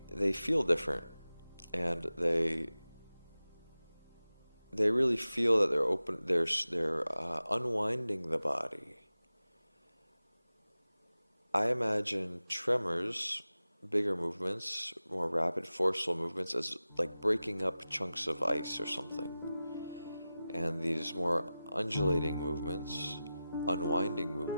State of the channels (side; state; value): both; inverted; correlation -0.95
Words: feel different, and they really feel that they're unwinding the body. I imagine tremors, bigger movements, more rapid, forceful movements, as like breaking up chunks of ice or something. And these more undulating movements, unwinding